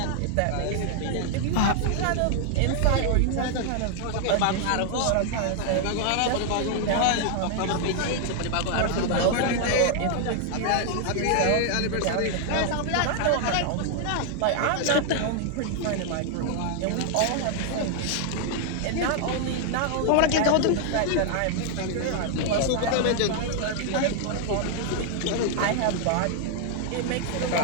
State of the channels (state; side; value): different; both; correlation 0.00